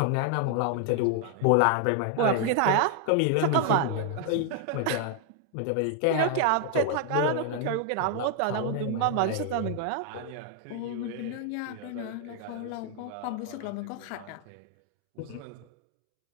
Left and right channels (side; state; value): both; different; correlation 0.00